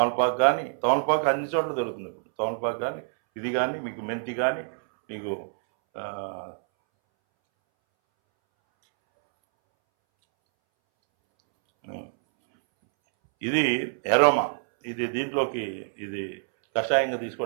కానీ, తమలపాకు అన్ని చోట్ల దొరుకుతుంది ఇప్పుడు. తమలపాకు కానీ ఇది కానీ మీకు మెంతి కానీ మీకు ఇది ఎరోమా, ఇది దీంట్లోకి ఇది కషాయంగా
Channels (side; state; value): left; silent; 61 dB below the other